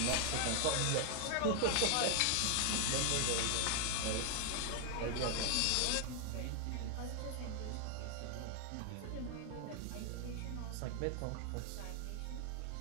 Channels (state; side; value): different; both; correlation 0.00